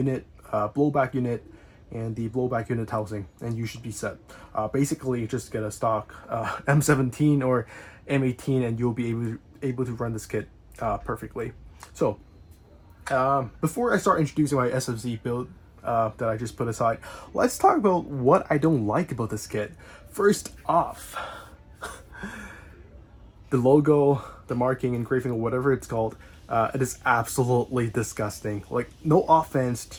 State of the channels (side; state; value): both; identical; correlation 1.00